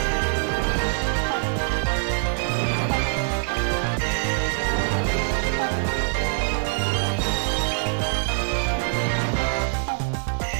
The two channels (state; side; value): silent; left; digital silence